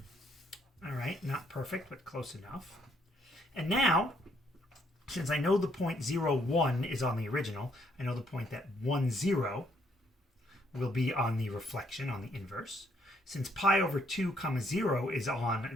All right, not perfect, but close enough. And now, since I know the point 0, 1 is on the original, I know the point that 1, 0 will be on the reflection, on the inverse. Since pi over 2 comma 0 is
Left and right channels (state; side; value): normal; both; correlation 0.70